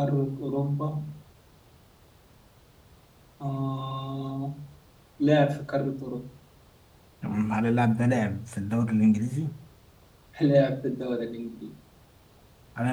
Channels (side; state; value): both; identical; correlation 1.00